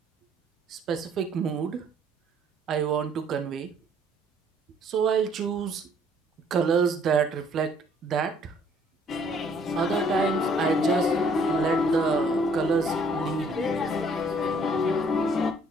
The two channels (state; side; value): normal; both; correlation 0.61